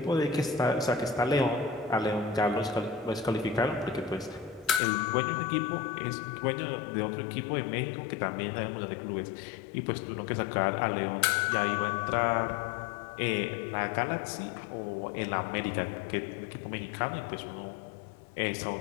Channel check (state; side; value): drops out; right; at 4.8 s